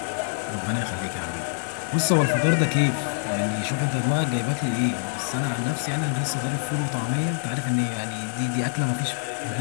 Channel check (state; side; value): silent; right; digital silence